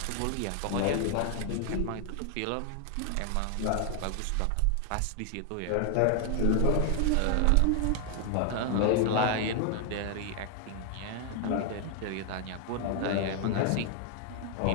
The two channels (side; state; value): both; different; correlation 0.00